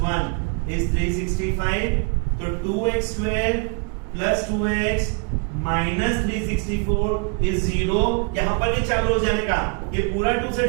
1 is 365. तो 2x square plus 2x minus 364 is 0. यहां पर ये चालू हो जाने का, ये पूरा 2 से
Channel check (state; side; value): quieter; left; 35.3 dB